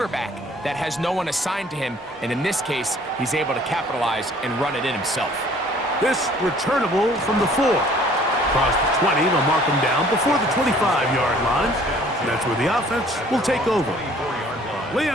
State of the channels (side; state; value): both; normal; correlation 0.55